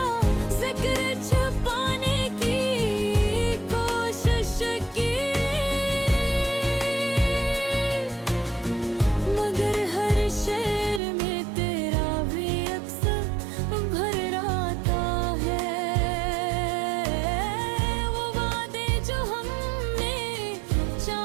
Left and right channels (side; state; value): left; drops out; at 11.0 s